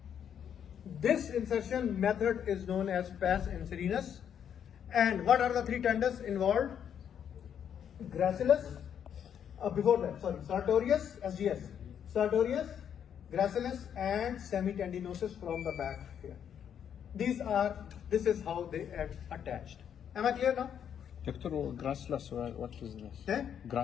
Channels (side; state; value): right; quieter; 8.7 dB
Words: This insertion method is known as pes and serenus. And what are the three tendons involved? Gracilis, sartorius, SGS. Sartorius, gracilis and semitendinosus from the back here. This is how they are attached. Am I clear now? Doctor, gracilis, what is this? Eh?